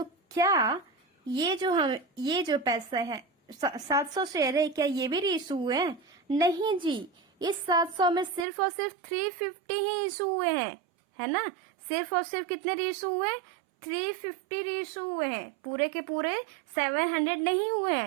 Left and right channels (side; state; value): left; drops out; at 8.5 s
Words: क्या ये जो पैसा है 700 शेयर है, क्या ये भी रीइशू हुए हैं? नहीं जी, इस 700 में सिर्फ और सिर्फ 350 ही इशू हुए हैं, है ना। सिर्फ और सिर्फ कितने रीइशू हुए? 350 रीइशू हुए हैं, पूरे के पूरे 700 नहीं हुए